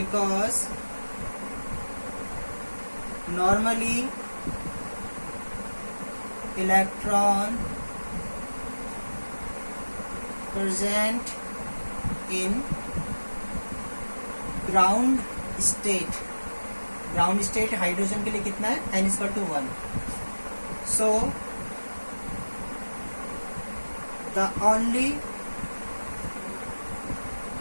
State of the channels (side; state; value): both; inverted; correlation -1.00